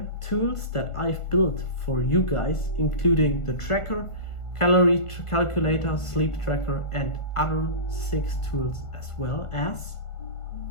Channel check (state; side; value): late; right; 1.5 ms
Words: tools that I've built for you guys, including the tracker, calorie calculator, sleep tracker, and other 6 tools, as well as